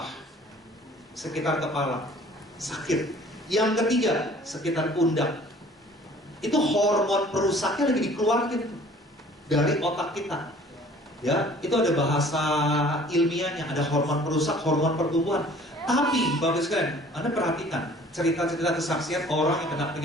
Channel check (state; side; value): normal; both; correlation 0.52